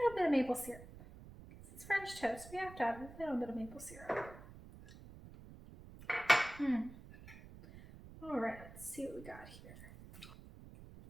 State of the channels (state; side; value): noise; right; rumble, 16 dB below the sound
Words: bit of maple syrup. It's French toast, we have to have a little bit of maple syrup. All right, let's see what we got here.